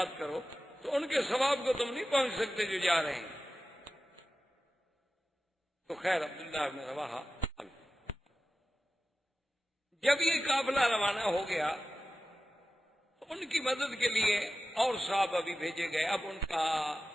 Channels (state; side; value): normal; both; correlation 0.93